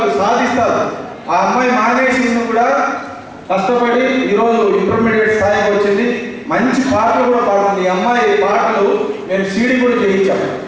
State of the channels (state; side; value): identical; both; correlation 1.00